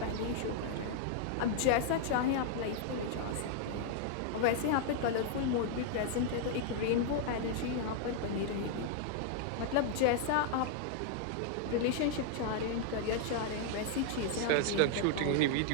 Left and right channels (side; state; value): both; different; correlation 0.00